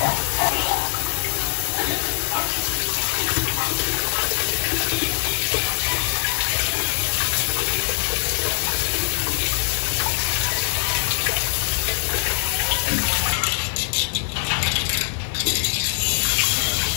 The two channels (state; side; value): silent; right; 64 dB below the other